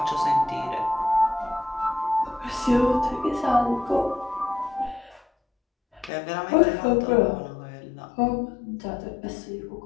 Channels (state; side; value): drops out; right; at 6.1 s